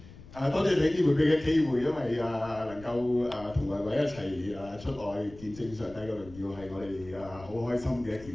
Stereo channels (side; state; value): left; noise; rumble, 18 dB below the sound